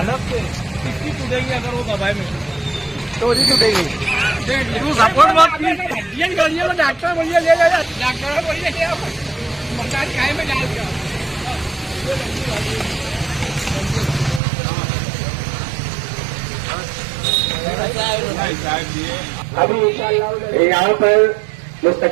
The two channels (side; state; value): left; drops out; at 14.4 s